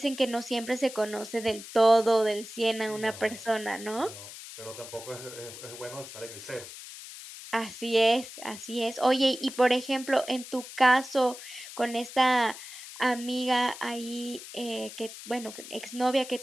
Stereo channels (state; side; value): noise; left; hiss, 13 dB below the sound